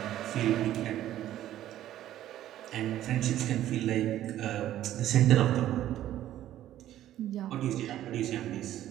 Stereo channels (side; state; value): left; quieter; 12.8 dB